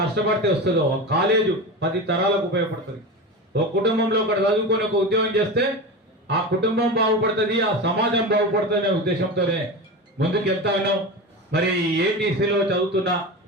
కష్టపడితే వస్తుందో, ఒక కాలేజు 10 తరాలకు ఉపయోగపడుతుంది. ఒక కుటుంబంలో ఒకటి చదువుకొని ఒక ఉద్యోగం చేస్తే ఆ కుటుంబం బాగుపడుతుంది, ఆ సమాజం బాగుపడుతుంది అనే ఉద్దేశంతోనే ముందుకు వెళ్తా ఉన్నాం. మరి ఏటీసీలో చదువుతున్న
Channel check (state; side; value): normal; both; correlation 0.25